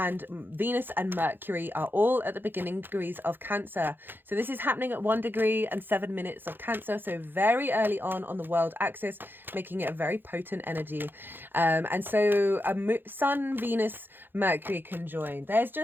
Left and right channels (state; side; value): late; left; 0.098 ms